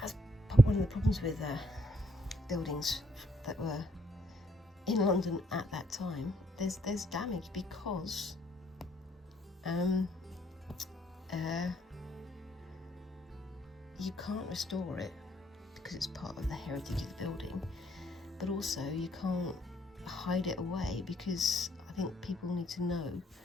one of the problems with buildings that were in London at that time. There's damage because you can't restore it because it's part of the heritage of the building, but also you can't hide it away because I think people need to know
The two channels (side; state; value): both; normal; correlation 0.69